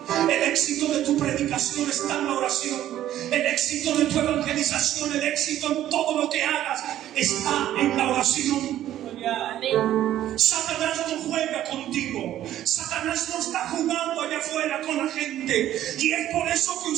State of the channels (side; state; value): left; quieter; 12.5 dB